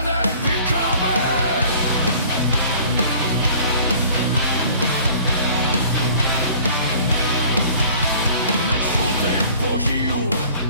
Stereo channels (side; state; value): both; inverted; correlation -0.49